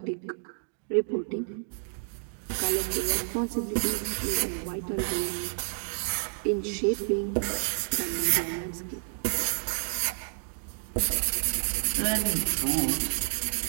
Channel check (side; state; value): left; silent; digital silence